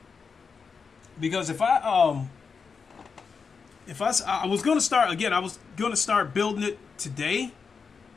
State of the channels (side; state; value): right; quieter; 5.4 dB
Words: Because if I was gonna start again, I was gonna start building it today,